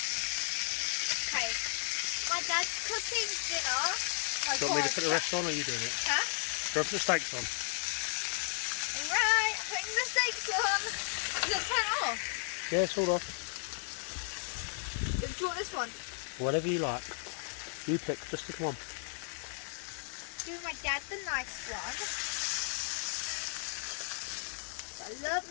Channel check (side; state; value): right; silent; 55 dB below the other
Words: Okay. My dad's cooking dinner. Do you want me to put the rest on or are you doing it? Huh? Do I put the steaks on? Right, I'm putting the steaks on. Is it turn off? Yeah, it's all off. Do you want this one? Whatever you like. You pick, just pick one. Give my dad the nice one. I love